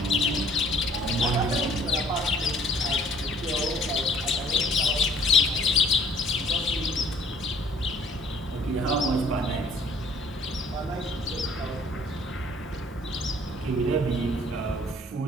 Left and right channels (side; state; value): both; normal; correlation 0.56